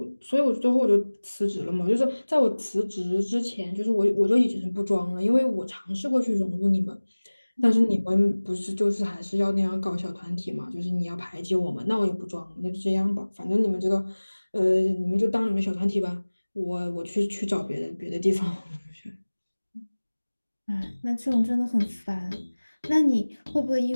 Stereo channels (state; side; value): inverted; both; correlation -1.00